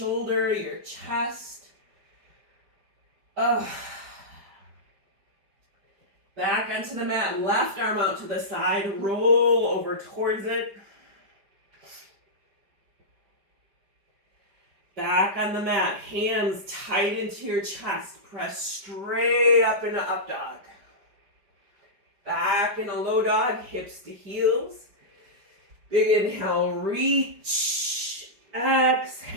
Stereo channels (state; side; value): late; left; 5.0 ms